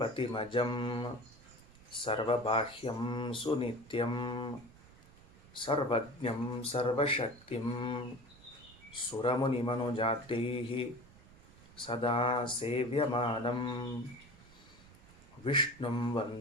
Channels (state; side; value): noise; right; rumble, 23 dB below the sound